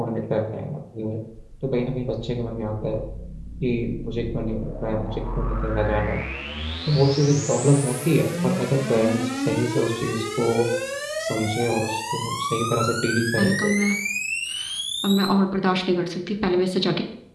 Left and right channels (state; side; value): identical; both; correlation 1.00